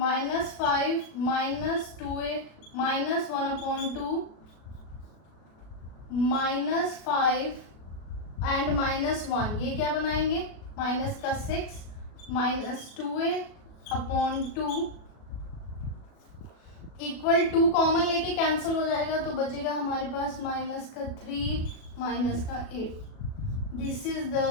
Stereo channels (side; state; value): right; late; 37 ms